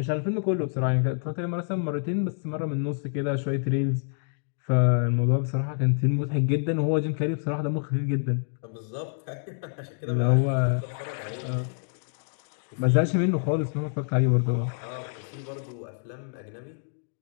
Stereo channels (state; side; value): silent; right; digital silence